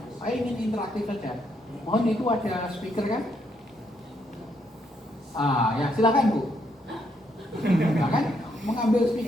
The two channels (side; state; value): both; normal; correlation 0.75